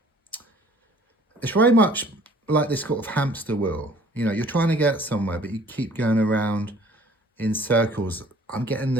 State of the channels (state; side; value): normal; both; correlation 0.54